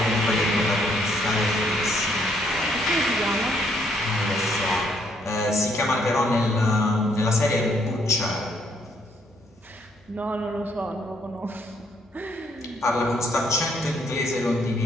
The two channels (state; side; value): normal; both; correlation 0.70